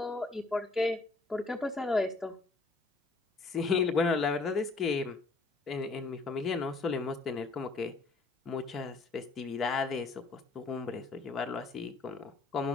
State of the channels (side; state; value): right; quieter; 3.8 dB